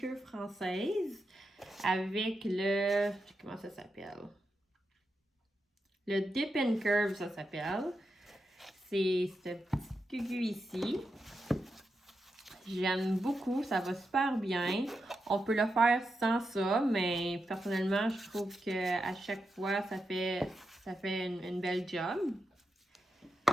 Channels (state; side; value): normal; both; correlation 0.87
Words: française avec comment ça s'appelle? Le Dip and Curve, ça s'appelle. C'est ce petit cucu ici. J'aime beaucoup, ça va super bien. On peut le faire sans ça, mais personnellement, je trouve qu'à chaque fois, ça fait une belle job.